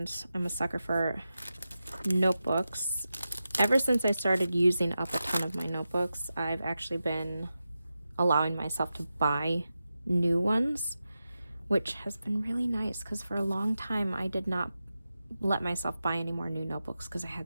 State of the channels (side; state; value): both; inverted; correlation -0.91